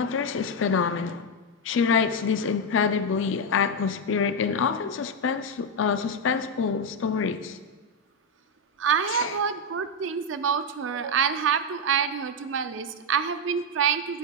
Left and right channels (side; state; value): both; normal; correlation 0.03